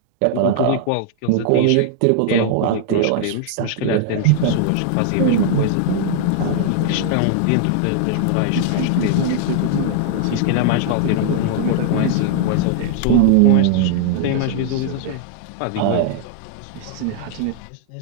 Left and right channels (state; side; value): different; both; correlation 0.00